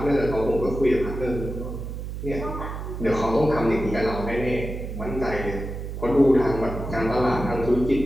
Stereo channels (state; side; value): noise; right; hum, 7 dB below the sound